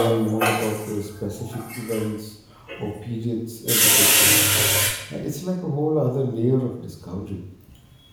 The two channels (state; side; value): identical; both; correlation 1.00